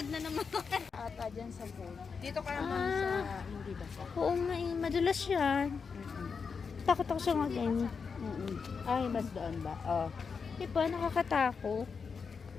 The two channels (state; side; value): quieter; right; 5.5 dB